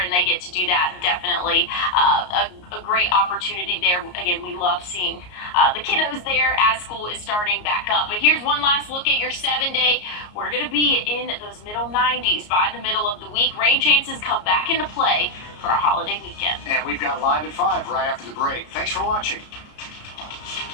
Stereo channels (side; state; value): right; late; 33 ms